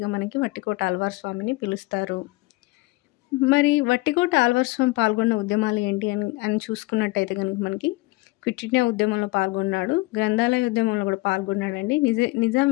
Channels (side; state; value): right; quieter; 22.4 dB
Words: మనకి వట్టికోట అల్వార్ స్వామిని పిలుస్తారు. మరి వట్టికోట అల్వార్ స్వామి పాల్గొన్న ఉద్యమాలు ఏంటి అని చూసుకున్నట్టయితే కనుక మనకి క్విట్ ఇండియా ఉద్యమంలో పాల్గొన్నాడు, గ్రంథాలయ ఉద్యమంలో కూడా పాల్గొన్నాడండి, నిజాం